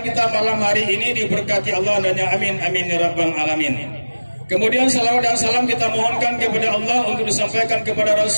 kita malam hari ini diberkati Allah dan ya amin amin ya rabbal alamin. Kemudian salawat dan salam kita mohonkan kepada Allah untuk disampaikan kepada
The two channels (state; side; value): inverted; both; correlation -1.00